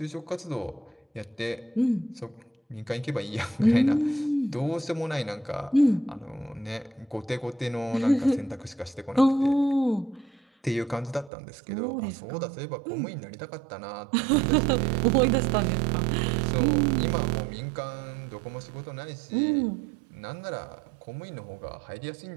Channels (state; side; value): drops out; left; at 11.3 s